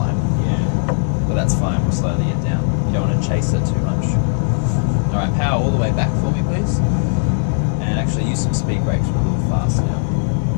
Yeah. But that's fine, we'll slowly get down. You don't want to chase it too much. Alright, power all the way back for me, please. And actually use some speed brakes, we're a little fast now.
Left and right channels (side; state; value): right; silent; digital silence